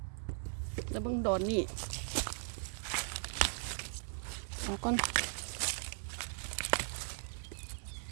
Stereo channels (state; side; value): silent; left; 52 dB below the other